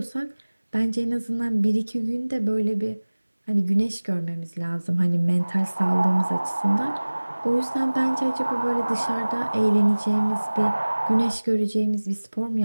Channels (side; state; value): both; inverted; correlation -1.00